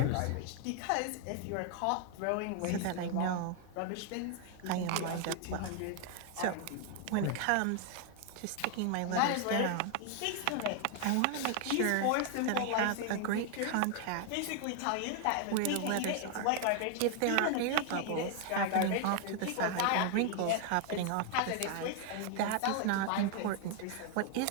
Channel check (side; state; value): both; different; correlation 0.00